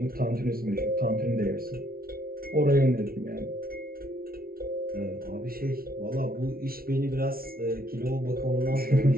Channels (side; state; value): left; late; 0.43 ms